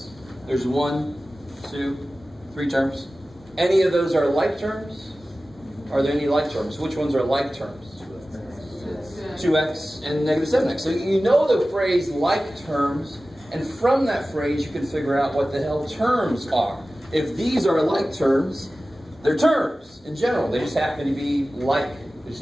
There's 1, 2, 3 terms. Any of those are like terms? Are there any like terms? Which ones are like terms? 2x and negative 7x. So you know the phrase like terms, and from that phrase you can figure out what the hell terms are. If these are like terms, they're terms in general. They just happen to be like. They just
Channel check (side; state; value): both; normal; correlation 0.96